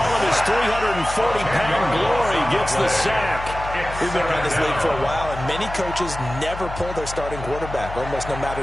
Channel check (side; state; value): left; noise; hum, 10 dB below the sound